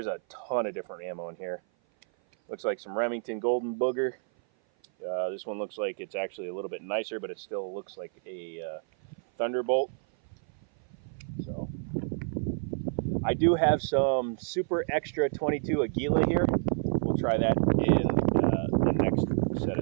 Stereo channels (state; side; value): silent; left; 56 dB below the other